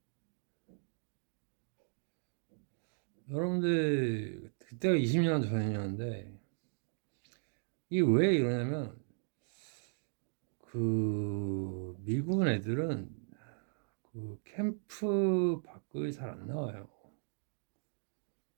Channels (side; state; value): left; silent; digital silence